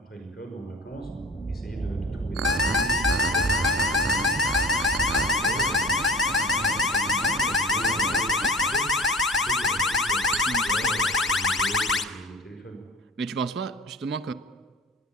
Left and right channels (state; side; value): normal; both; correlation 0.42